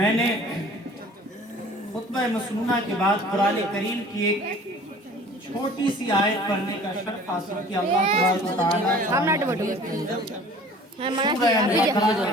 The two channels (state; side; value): normal; both; correlation 0.48